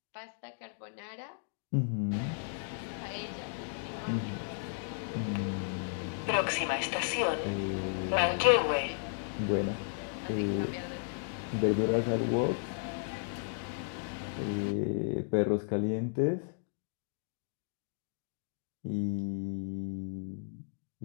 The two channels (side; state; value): right; silent; digital silence